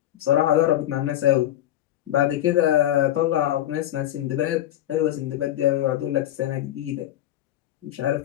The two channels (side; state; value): right; quieter; 12.9 dB